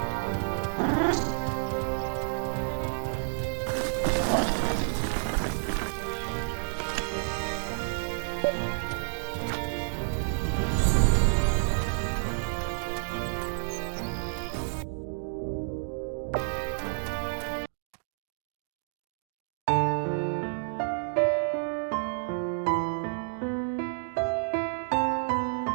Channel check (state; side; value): silent; left; digital silence